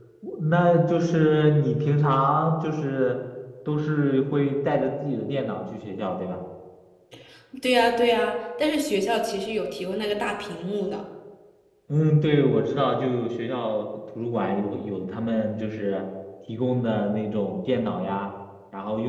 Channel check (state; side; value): identical; both; correlation 1.00